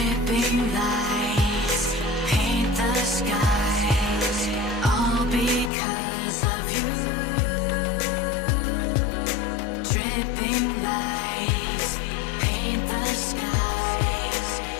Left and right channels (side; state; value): right; drops out; at 5.7 s